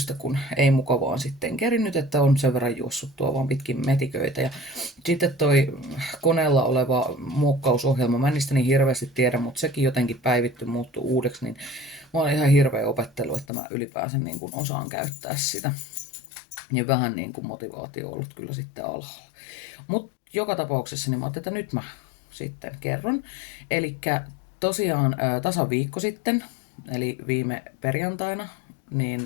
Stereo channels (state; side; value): drops out; right; at 13.5 s